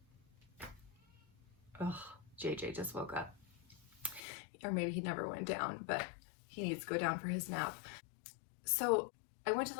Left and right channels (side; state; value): right; drops out; at 4.2 s